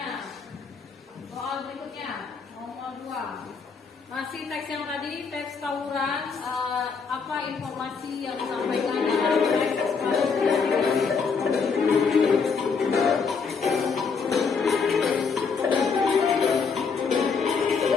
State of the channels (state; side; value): quieter; right; 5.4 dB